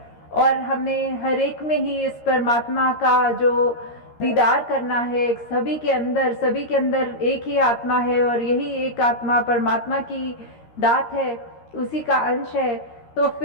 और हमें हर एक में ही इस परमात्मा का जो दीदार करना है। सभी के अंदर एक ही आत्मा है और यही एक आत्मा परमात्मा की दात है, उसी का अंश है। तो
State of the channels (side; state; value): right; late; 13 ms